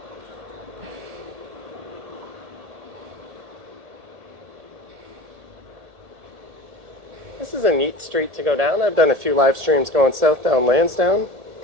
This is a neat street to go down. I've done a few live streams going south down Lansdowne.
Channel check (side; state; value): left; late; 1.7 ms